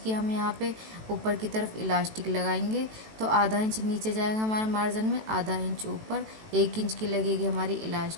हम यहाँ पे ऊपर की तरफ इलास्टिक लगाएंगे। तो आधा इंच नीचे जाएगा हमारा मार्जिन में, आधा इंच ऊपर, 1 इंच की लगेगी हमारी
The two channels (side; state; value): left; late; 18 ms